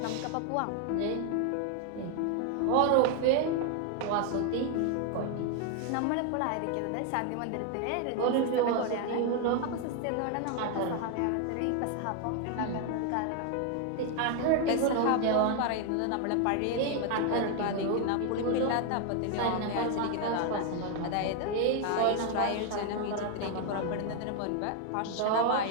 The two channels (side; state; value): both; different; correlation 0.01